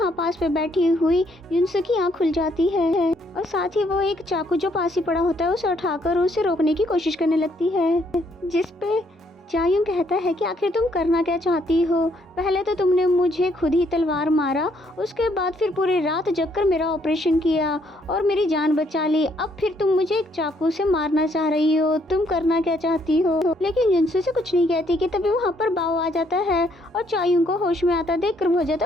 पास पे बैठी हुई युनसुक की आँख खुल जाती है और साथ ही वो एक चाकू जो पास ही पड़ा होता है उसे उठाकर उसे रोकने की कोशिश करने लगती है। जिस पे चायुंग कहता है कि आखिर तुम करना क्या चाहती हो, पहले तो तुमने मुझे खुद ही तलवार मारा, उसके बाद फिर पूरी रात जगकर मेरा ऑपरेशन किया और मेरी जान बचा ली, अब फिर तुम मुझे एक चाकू से मारना चाह रही हो, तुम करना क्या चाहती हो। लेकिन युनसु से कुछ नहीं कहती कि तभी वहाँ पर बाओ आ जाता है और चायुंग को होश में आता देखकर बहुत ज्यादा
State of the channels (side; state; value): both; normal; correlation 0.69